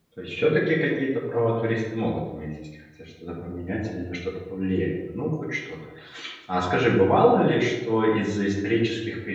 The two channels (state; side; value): identical; both; correlation 1.00